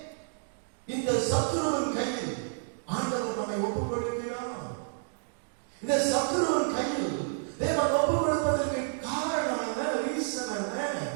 இந்த சத்துருவின் கையில் ஆண்டவர் நம்மை ஒப்பு கொடுக்கிறார்? இந்த சத்துருவின் கையில் தேவன் ஒப்பு கொடுப்பதற்கு காரணம் என்ன? ரீசன் என்ன?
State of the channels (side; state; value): left; silent; digital silence